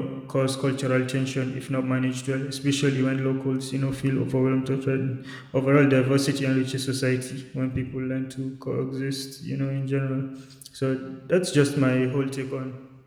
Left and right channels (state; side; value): identical; both; correlation 1.00